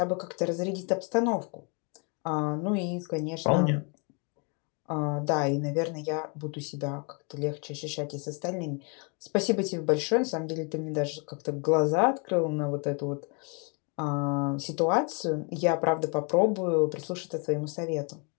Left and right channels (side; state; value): right; quieter; 35.1 dB